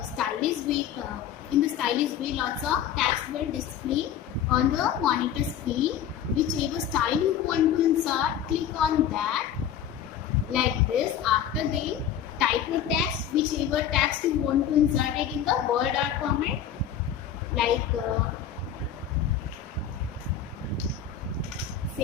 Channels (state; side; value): quieter; right; 9.2 dB